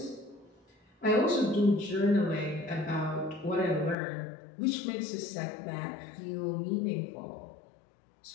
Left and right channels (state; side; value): drops out; right; at 4.0 s